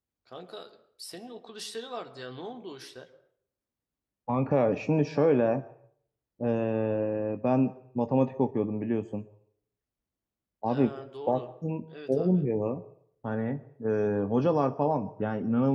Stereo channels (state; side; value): identical; both; correlation 1.00